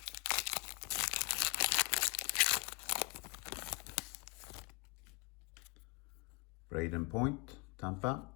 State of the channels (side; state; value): right; quieter; 30.2 dB